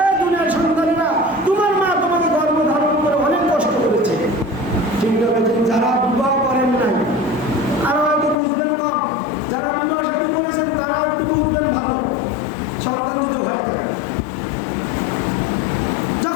দুনিয়ার সন্তানরা, তোমার মা তোমাকে গর্ভধারণ করে অনেক কষ্ট করেছে। ঠিক আছে, যারা বিবাহ করেন নাই আরো হয়তো বুঝবেন কম, যারা বিবাহ শাদী করেছেন তারা একটু বুঝবেন ভালো। সন্তান যদি হয়ে থাকে,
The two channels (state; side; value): drops out; right; at 8.3 s